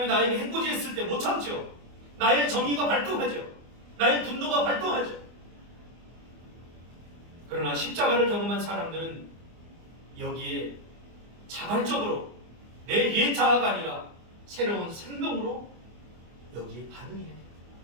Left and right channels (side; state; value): left; late; 24 ms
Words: 나에게 해코지했을 때 못 참죠. 나의 정의가 발동하죠. 나의 분노가 발동하죠. 그러나 십자가를 경험한 사람들은 여기에 자발적으로 내 옛 자아가 아니라 새로운 생명으로 여기에 반응해야 돼요.